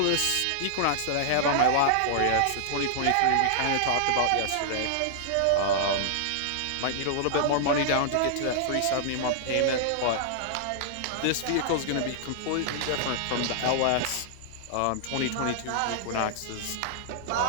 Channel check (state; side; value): different; both; correlation -0.01